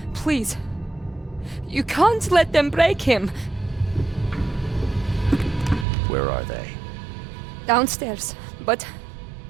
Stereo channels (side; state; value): left; drops out; at 5.9 s